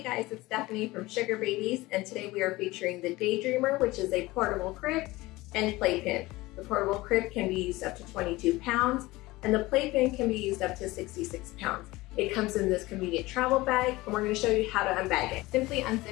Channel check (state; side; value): quieter; right; 20.0 dB